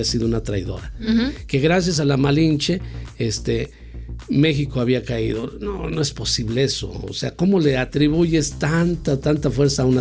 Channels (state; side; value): identical; both; correlation 1.00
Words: sido una traidora, que gracias a la Malinche México había caído. No es posible eso. O sea, ¿cómo le atribuyes tanta fuerza a